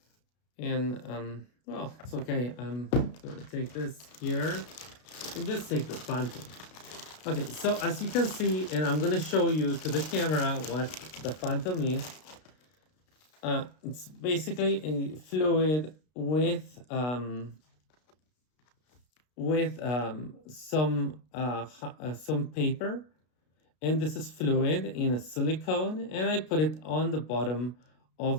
And well, it's okay. I'm gonna take this here and just take the phantom. Okay, so as you can see, and I'm gonna show you to the camera what the phantom is. It's basically a fluid with some paper, and this is fluid in a silicone, and I put it on the bottom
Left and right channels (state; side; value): late; right; 33 ms